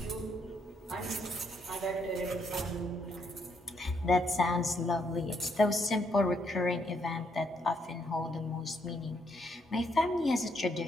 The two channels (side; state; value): both; normal; correlation 0.74